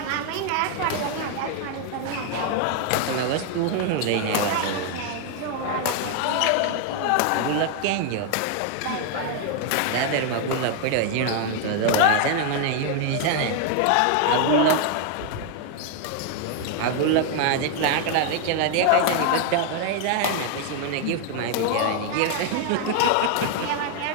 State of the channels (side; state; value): both; different; correlation 0.00